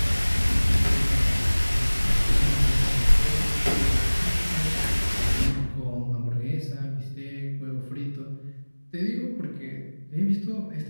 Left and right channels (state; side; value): inverted; both; correlation -1.00